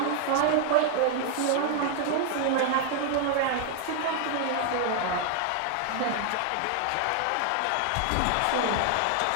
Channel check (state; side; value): different; both; correlation 0.00